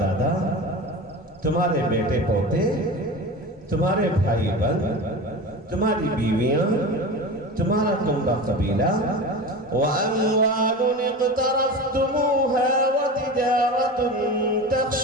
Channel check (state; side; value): normal; both; correlation 0.30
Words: دادا، تمہارے بیٹے پوتے، تمہارے بھائی بہن، تمہاری بیویاں، تمہارا کنبہ قبیلہ، وَأَمْوَالٌ اقْتَرَفْتُمُوهَا وَتِجَارَةٌ